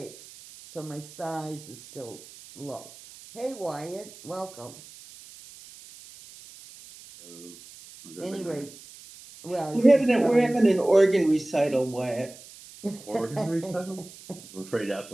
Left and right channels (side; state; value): right; noise; hiss, 19 dB below the sound